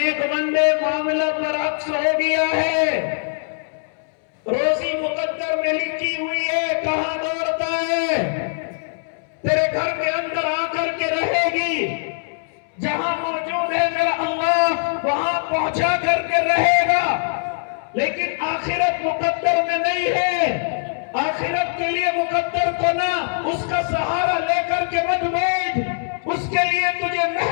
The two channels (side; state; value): right; silent; 64 dB below the other